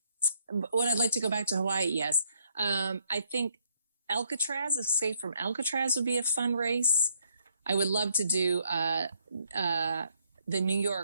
I like to go back to Hawaii? Yes. I think Alcatraz, Escape from Alcatraz would be a fun race. I would love to do, the New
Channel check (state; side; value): inverted; both; correlation -0.70